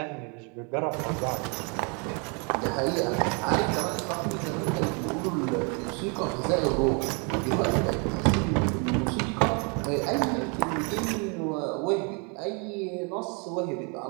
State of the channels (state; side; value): quieter; left; 34.5 dB